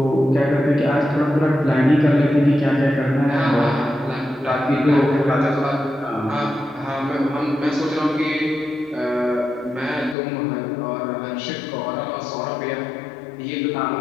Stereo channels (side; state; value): right; drops out; at 10.2 s